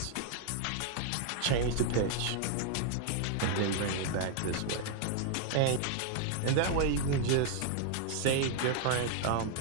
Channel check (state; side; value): different; both; correlation 0.00